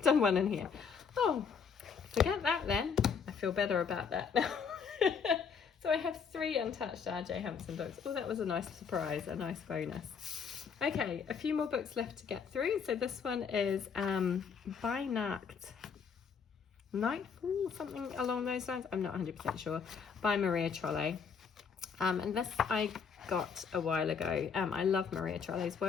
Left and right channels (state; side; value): quieter; right; 6.3 dB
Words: done one in here. Oh, forget that then. I feel better about that now. So I have 3 untouched R.J. Hempson books. Oh, that was a nice surprise, a nice bonus. Okay, a few more books left to get through. So this one is by Nightfall, something along those lines. I'm not 100% sure. By Maria Trolle. And this I got a while ago. I love Maria Trolle's